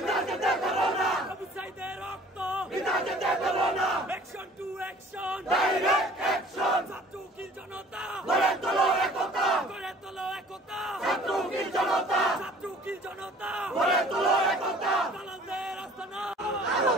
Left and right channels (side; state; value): both; normal; correlation 0.50